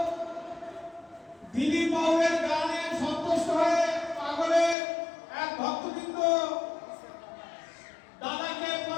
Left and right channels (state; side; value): drops out; right; at 4.8 s